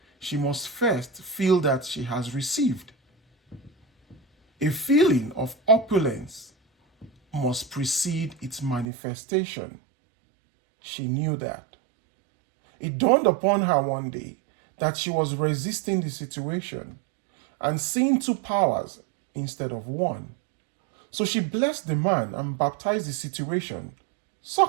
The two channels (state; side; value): drops out; left; at 8.8 s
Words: she must first feel that she has received. A feeling of opulence must precede its manifestation. She knew that. It dawned upon her one day that she was resisting the situation and seeing two powers instead of one. So she blessed the man and baptized the situation